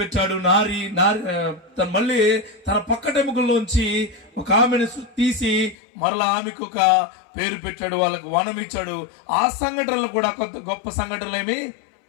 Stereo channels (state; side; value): drops out; right; at 5.8 s